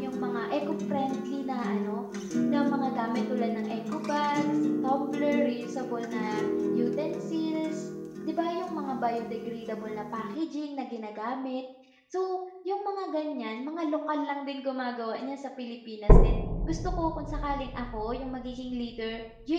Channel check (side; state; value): both; identical; correlation 1.00